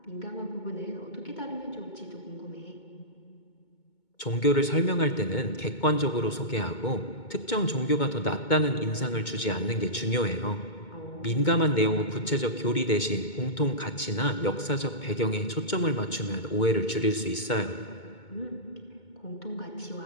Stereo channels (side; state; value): right; late; 2.2 ms